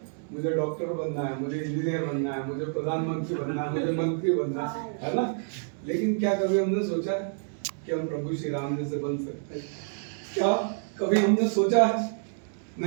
मुझे डॉक्टर बनना है, मुझे इंजीनियर बनना है, मुझे प्रधानमंत्री बनना है, मुझे मंत्री बनना है ना? लेकिन क्या कभी हमने सोचा है कि हम प्रभु श्री राम जैसे बन सकते हैं? क्या कभी हमने सोचा है?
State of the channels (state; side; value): silent; left; 59 dB below the other